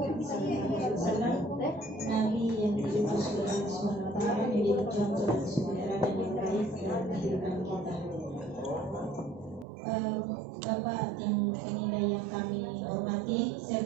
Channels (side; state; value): left; drops out; at 9.7 s